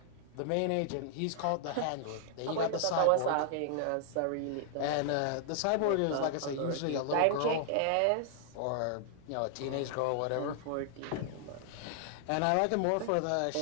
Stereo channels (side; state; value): both; different; correlation 0.00